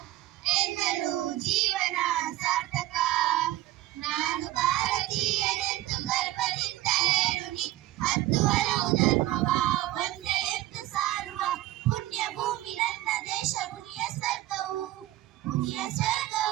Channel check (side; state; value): left; quieter; 15.8 dB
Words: ಎಂದರು ಜೀವನ ಸಾರ್ಥಕ ನಾನು ಭಾರತೀಯನೆಂದು ಗರ್ವದಿಂದ ಹೇಳುನಿ ಹತ್ತು ಹಲವು ಧರ್ಮವ ಒಂದೇ ಎಂದು ಸಾರುವ ಪುಣ್ಯ ಭೂಮಿ ನನ್ನ ದೇಶ ಪುಣ್ಯ